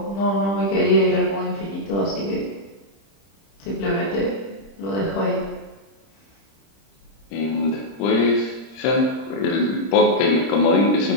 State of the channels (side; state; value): right; late; 30 ms